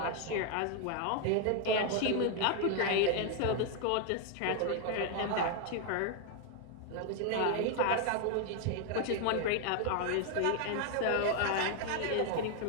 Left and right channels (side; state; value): both; different; correlation 0.01